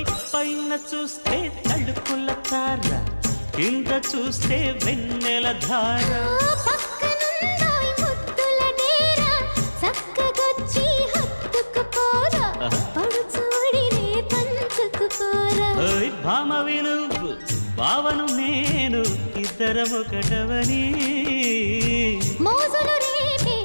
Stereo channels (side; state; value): both; inverted; correlation -1.00